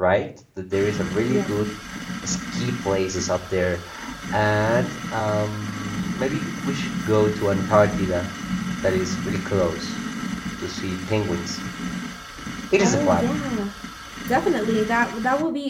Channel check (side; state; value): both; identical; correlation 1.00